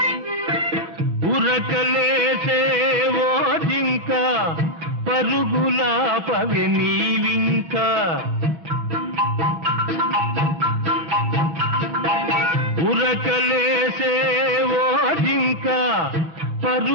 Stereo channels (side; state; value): left; late; 6.1 ms